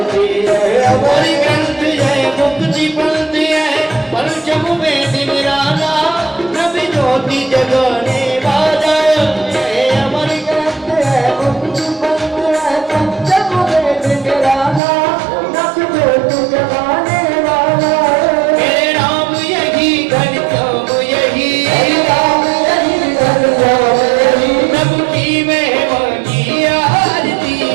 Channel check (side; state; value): left; drops out; at 14.8 s